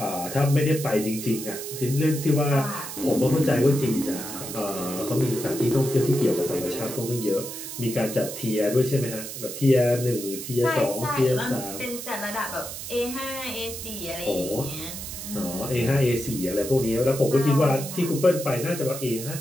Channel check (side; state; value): right; noise; hiss, 9 dB below the sound